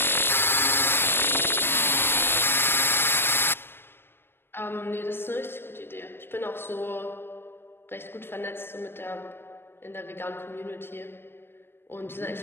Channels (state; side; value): late; right; 0.10 ms